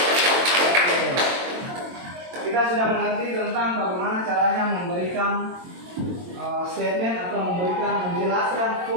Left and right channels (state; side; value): late; left; 22 ms